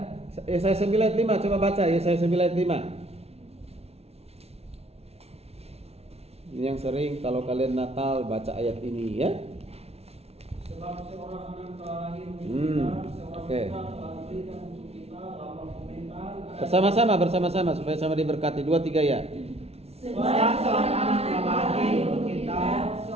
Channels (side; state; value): left; late; 0.30 ms